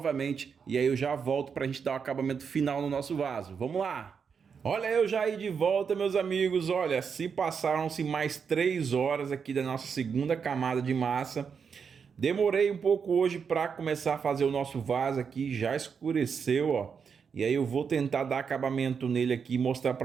e aí eu já volto para a gente dar o acabamento final no nosso vaso. Vamos lá! Olha eu já aí de volta, meus amigos, olha, se passaram-se mais 3 horas aqui da nossa segunda camada de massa. Demorei um pouco hoje para começar a fazer o nosso vaso aqui, já escureceu, ó. E aí eu vou tentar dar acabamento nele aqui e mostrar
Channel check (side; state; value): left; quieter; 6.3 dB